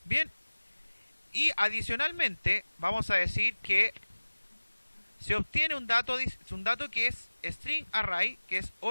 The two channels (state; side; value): inverted; both; correlation -1.00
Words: Bien. Y adicionalmente vamos a decir que se obtiene un dato que es string array, que es